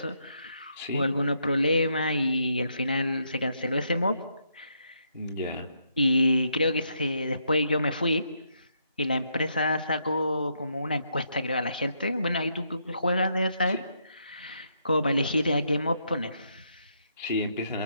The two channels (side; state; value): both; inverted; correlation -0.77